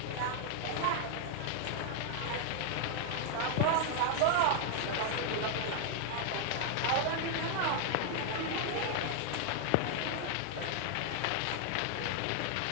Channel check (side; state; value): both; different; correlation 0.00